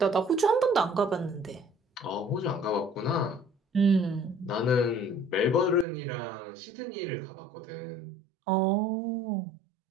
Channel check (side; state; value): left; drops out; at 5.9 s